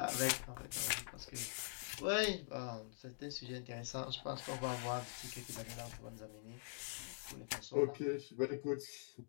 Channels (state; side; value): silent; right; digital silence